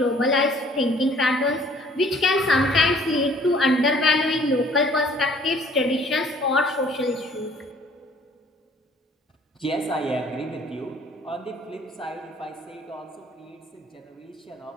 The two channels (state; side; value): normal; both; correlation 0.57